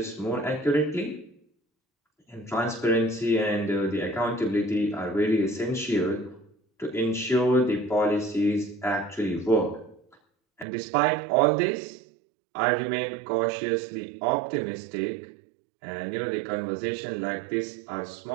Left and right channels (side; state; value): left; drops out; at 10.7 s